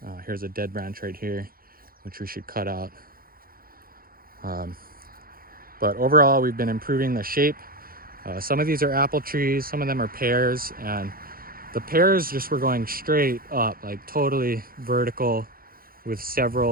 Here's a dead branch right here, which we should cut out. But overall, we've been improving the shape. Some of these are apple trees, some of them are pears, and the pears just were going straight up, like totally vertical, with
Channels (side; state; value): left; late; 0.42 ms